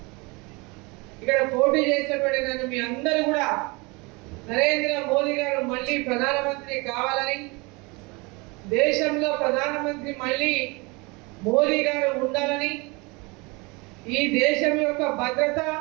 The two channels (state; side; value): quieter; left; 26.8 dB